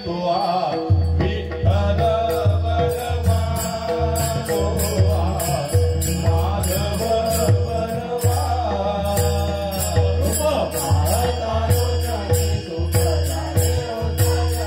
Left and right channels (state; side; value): identical; both; correlation 1.00